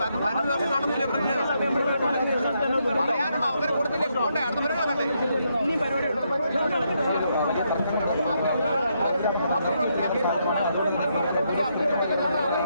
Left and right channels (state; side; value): inverted; both; correlation -0.78